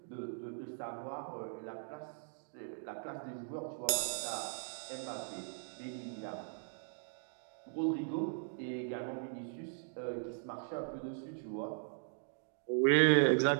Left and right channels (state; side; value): silent; left; digital silence